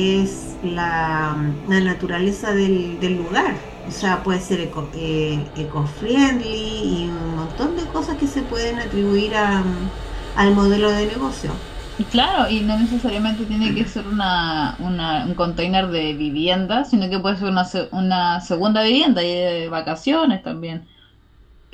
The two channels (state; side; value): identical; both; correlation 1.00